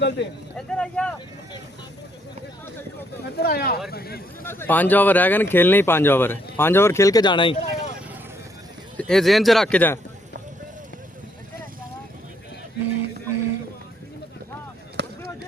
ਤੇ ਇੱਧਰ ਆਇਆ 5 ओवर रह गए ना खेलने ही 5 ओवर 5 ओवर खेल के जाना ही ये जेहन च रख के जा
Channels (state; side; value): normal; both; correlation 0.71